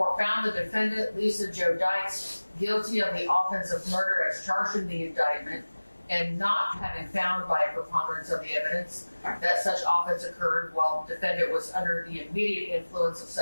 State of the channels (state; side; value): inverted; both; correlation -1.00